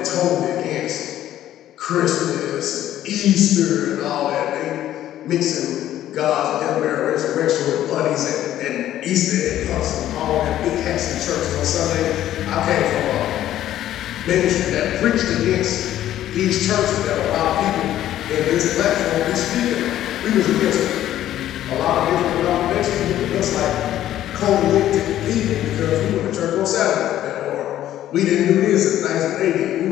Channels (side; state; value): right; quieter; 12.6 dB